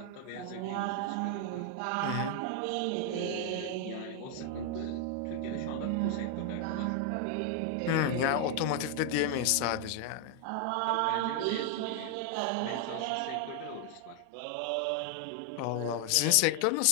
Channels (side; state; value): both; different; correlation 0.00